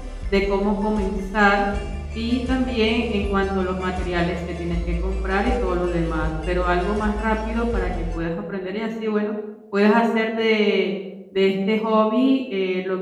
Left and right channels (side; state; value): both; identical; correlation 1.00